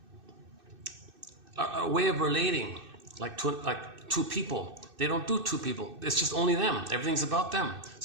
a way of relating, like two people. They don't do two people. It's just only them. Everything's about them.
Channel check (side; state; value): left; late; 2.6 ms